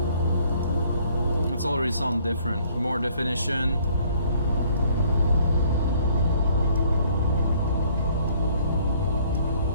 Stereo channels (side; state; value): both; inverted; correlation -0.60